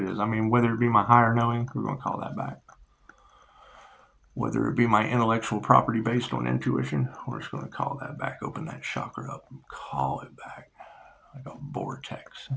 is. I mean, whether it be my higher knowing, we're going to call that back. Whether it be my intellectual property based on intuition, we're just going to call that back. Open that chakra up and call it back. Like a vortex.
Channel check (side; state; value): both; identical; correlation 1.00